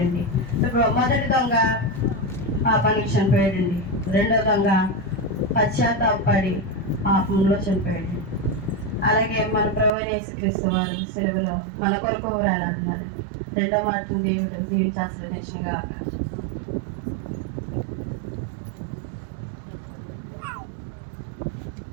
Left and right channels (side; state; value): left; drops out; at 9.9 s